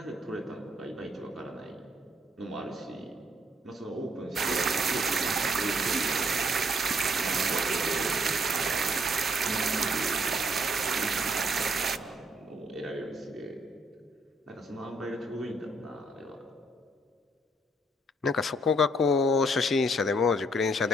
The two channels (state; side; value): normal; both; correlation 0.69